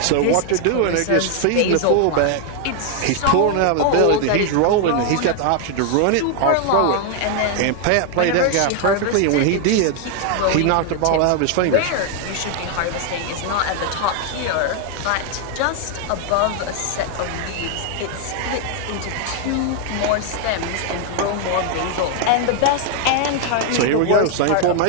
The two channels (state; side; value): different; both; correlation 0.00